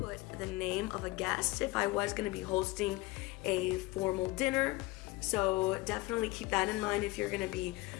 the name of a guest if I was going to be hosting a formal dinner. So definitely keep that in mind if you're going to be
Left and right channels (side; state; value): right; quieter; 20.4 dB